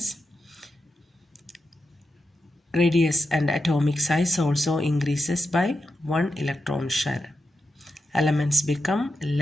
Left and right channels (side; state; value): both; normal; correlation 0.88